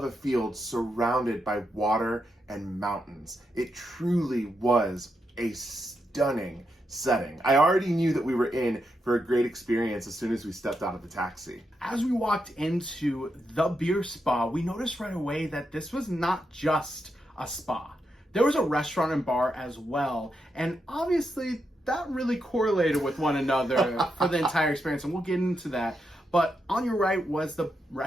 a field surrounded by water and mountains. It truly was a stunning setting. I already knew that we were in for a great experience as soon as we stepped out of the taxi. As we walked into the beer spa, we noticed right away that this was not just a spa. There was a restaurant and bar as well, and obviously that really correlated with one another for the entire experience, and we'll get into that. But on your right was the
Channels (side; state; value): both; normal; correlation 0.83